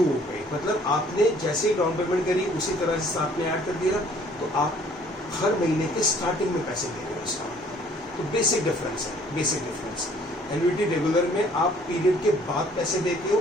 हो गई, मतलब आपने जैसे ही डाउन पेमेंट करी उसी तरह से आपने ऐड कर दिया, तो आप हर महीने के स्टार्टिंग में पैसे दे रहे हो उसका। तो बेसिक डिफरेंस है, बेसिक डिफरेंस। एन्युटी रेगुलर में आप पीरियड के बाद पैसे देते हो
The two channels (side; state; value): both; normal; correlation 0.57